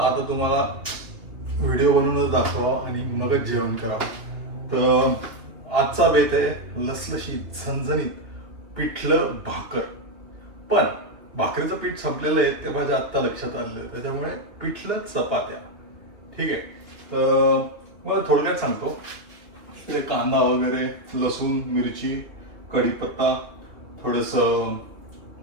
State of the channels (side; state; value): left; late; 2.8 ms